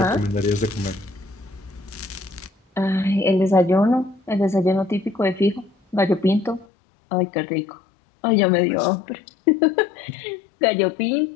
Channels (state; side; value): drops out; right; at 6.7 s